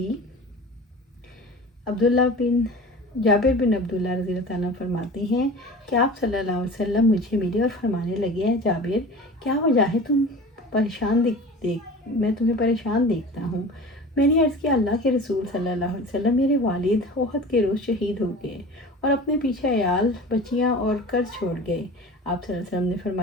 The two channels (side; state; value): both; normal; correlation 0.37